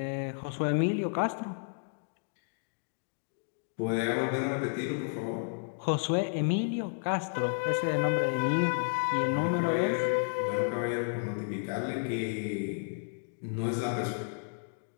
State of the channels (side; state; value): right; silent; digital silence